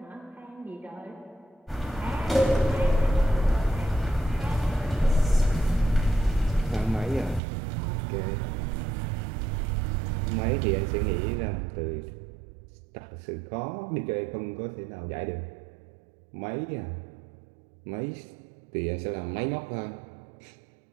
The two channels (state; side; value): drops out; left; at 7.4 s